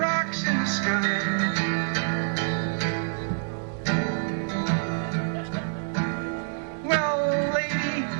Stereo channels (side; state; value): left; silent; 60 dB below the other